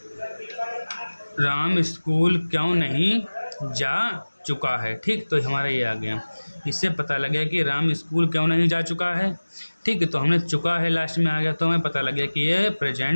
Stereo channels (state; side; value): inverted; both; correlation -1.00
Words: राम स्कूल क्यों नहीं जा चुका है। ठीक, तो हमारा ये आ गया, इससे पता लग गया कि राम स्कूल क्यों नहीं जा चुका है। ठीक है, तो हमने चुका है लास्ट में आ गया, तो हमें पता लग गया कि ये